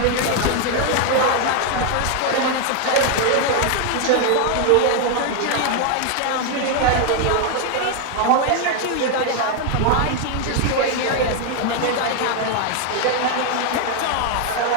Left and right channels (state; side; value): different; both; correlation 0.00